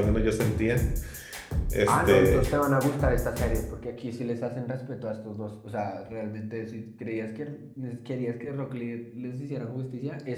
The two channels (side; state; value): both; identical; correlation 1.00